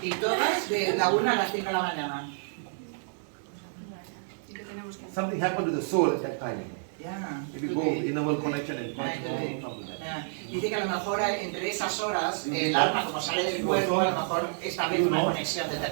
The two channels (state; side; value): silent; left; digital silence